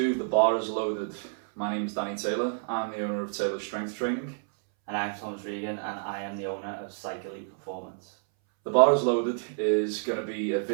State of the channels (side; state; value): left; silent; 59 dB below the other